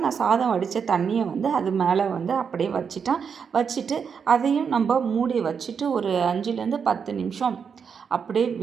நான் சாதம் வடித்த தண்ணியை வந்து அது மேலே வந்து அப்படியே வச்சுட்டேன். வச்சுட்டு அதையும் நம்ம மூடி வச்சுட்டு ஒரு 5லேருந்து 10 நிமிஷம் அப்படியே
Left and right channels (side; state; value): left; quieter; 6.5 dB